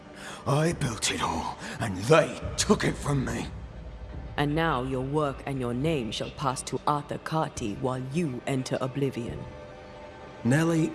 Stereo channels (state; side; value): identical; both; correlation 1.00